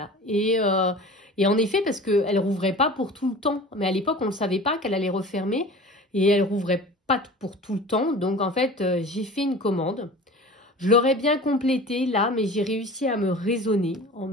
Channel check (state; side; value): normal; both; correlation 0.39